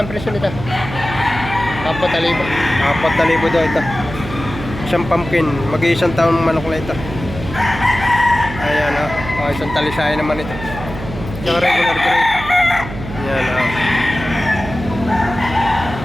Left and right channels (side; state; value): right; noise; hum, 10 dB below the sound